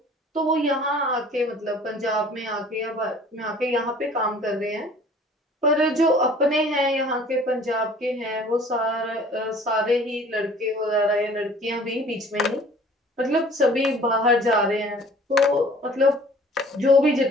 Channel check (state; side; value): normal; both; correlation 0.50